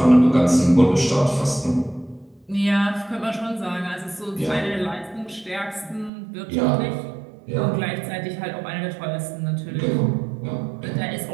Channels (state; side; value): drops out; left; at 6.1 s